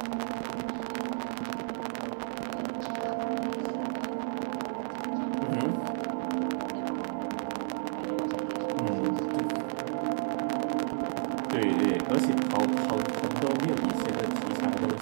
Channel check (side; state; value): left; silent; digital silence